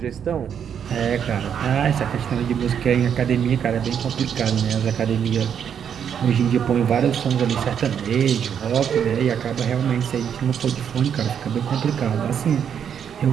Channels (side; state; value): left; quieter; 8.2 dB